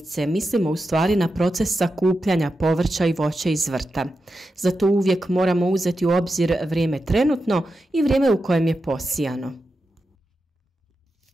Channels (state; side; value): normal; both; correlation 0.89